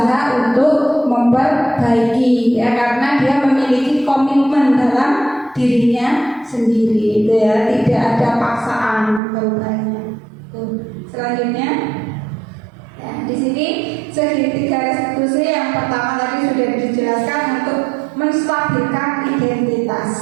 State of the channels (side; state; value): left; drops out; at 9.2 s